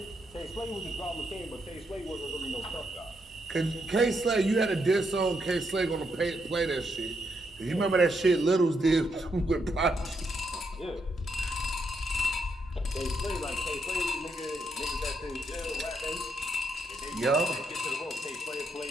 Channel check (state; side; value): normal; both; correlation 0.79